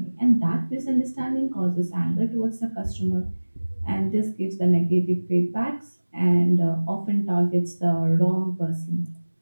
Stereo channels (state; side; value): inverted; both; correlation -1.00